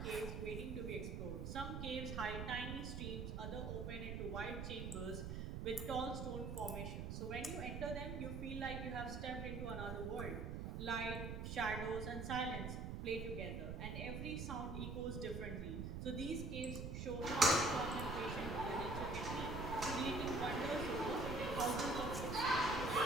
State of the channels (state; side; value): noise; right; rumble, 4 dB below the sound